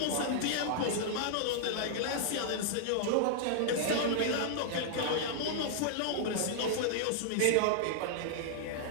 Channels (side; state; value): both; different; correlation -0.01